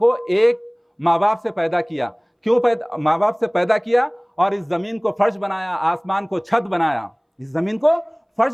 ایک ماں باپ سے پیدا کیا. کیوں ماں باپ سے پیدا کیا؟ اور اس زمین کو فرش بنایا, آسمان کو چھت بنایا. اس زمین کو فرش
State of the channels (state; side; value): identical; both; correlation 1.00